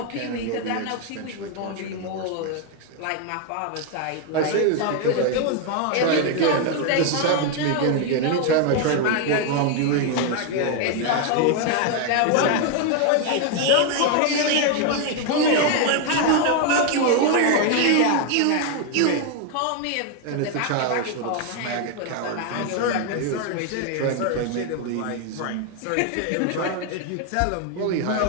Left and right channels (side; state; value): both; different; correlation 0.01